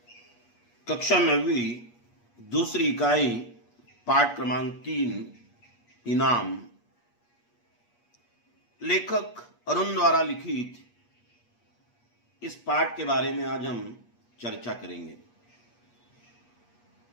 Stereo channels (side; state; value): right; late; 8.4 ms